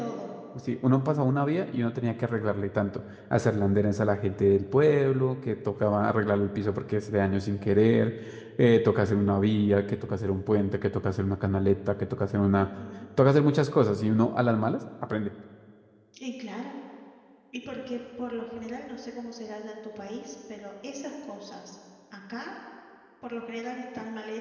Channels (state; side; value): identical; both; correlation 1.00